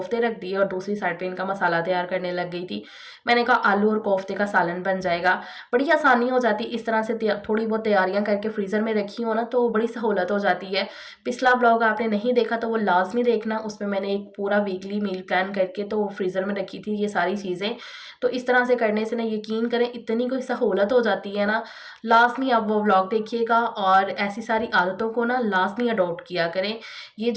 रख दिए और दूसरी साइड पे इनका मसाला तैयार करने लग गई थी। मैंने कहा आलू और कोफ्ते का सालन बन जाएगा, बड़ी आसानी हो जाती। इस तरह से थोड़ी बहुत तैयारियां करके फ्रीज़र में रखी हो ना तो बड़ी सहूलत हो जाती है। पिछला ब्लॉग आपने नहीं देखा तो वो लाजमी देखना, उसमें मैंने एक पूरा वीकली मील प्लान करके तो फ्रीज़र में रखी थी ये सारी चीज़ें। तो इस तरह से करने से ना यकीन करें इतनी कोई सहूलत हो जाती है ना। लाजमी आप वो व्लॉग देखिएगा और ऐसी सारी आदतों को ना लाजमी अडॉप्ट किया करें। ये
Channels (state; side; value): identical; both; correlation 1.00